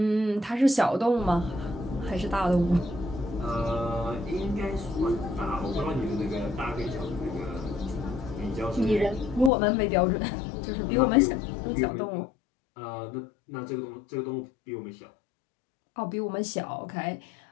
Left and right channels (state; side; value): drops out; right; at 9.5 s